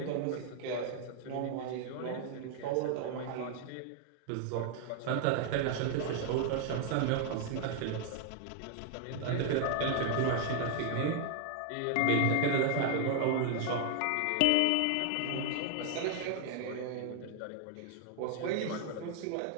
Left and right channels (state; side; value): different; both; correlation 0.00